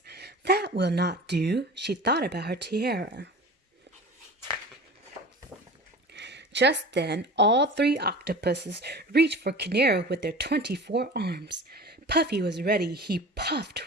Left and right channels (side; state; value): both; normal; correlation 0.36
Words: "That will not do." She thought about her tiara. Just then, all three octopuses reached for Canaro with their 24 arms. Puffy was ready. He puffed